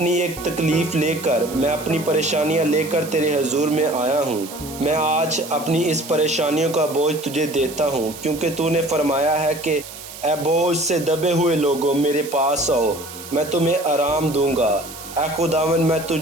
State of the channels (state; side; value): noise; right; hiss, 14 dB below the sound